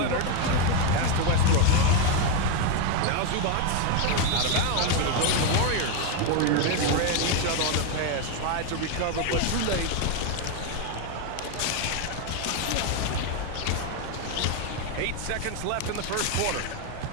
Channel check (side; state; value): both; different; correlation 0.01